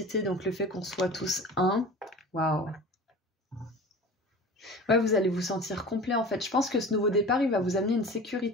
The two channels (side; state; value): both; normal; correlation 0.37